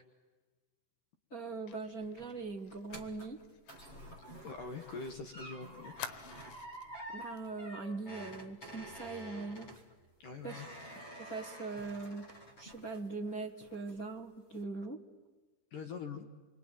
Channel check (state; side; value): late; right; 10 ms